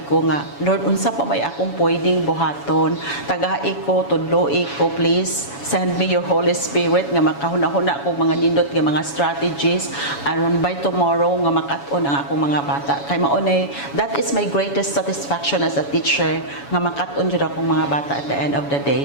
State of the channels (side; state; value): right; late; 7.1 ms